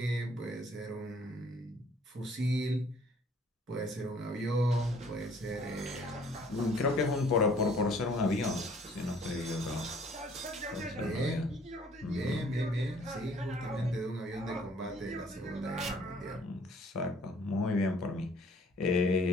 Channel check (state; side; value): normal; both; correlation 0.58